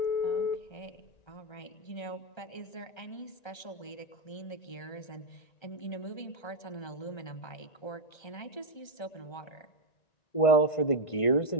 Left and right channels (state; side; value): late; right; 1.3 ms